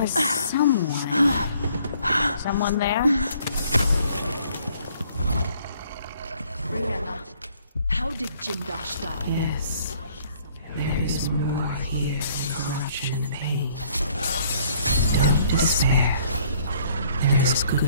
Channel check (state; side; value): inverted; both; correlation -0.61